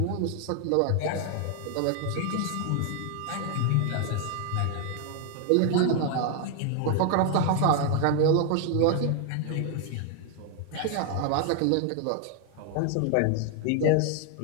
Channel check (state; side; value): different; both; correlation 0.00